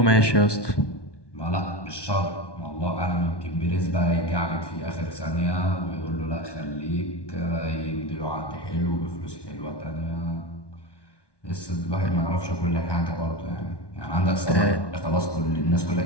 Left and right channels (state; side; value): late; right; 1.2 ms